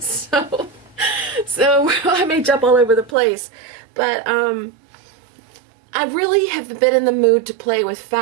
I may jump all over the place, but I really have been in the mood to play with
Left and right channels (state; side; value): drops out; left; at 3.2 s